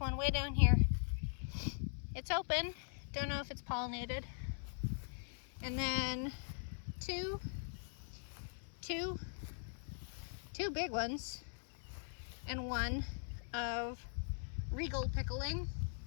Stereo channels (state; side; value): silent; right; 50 dB below the other